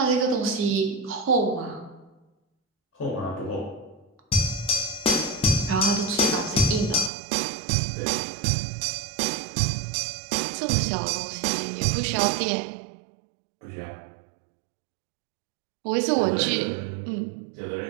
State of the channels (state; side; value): drops out; left; at 7.1 s